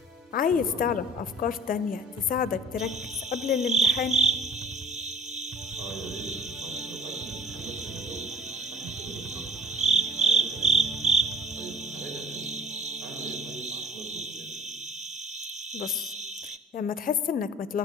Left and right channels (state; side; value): normal; both; correlation 0.51